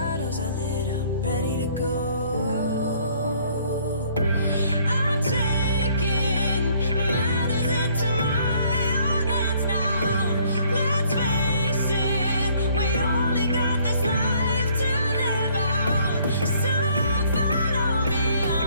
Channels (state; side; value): inverted; both; correlation -0.61